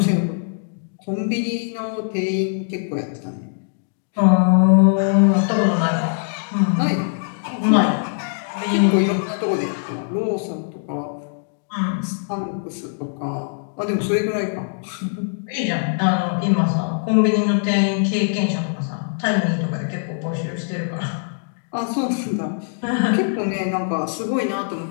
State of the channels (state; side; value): silent; right; digital silence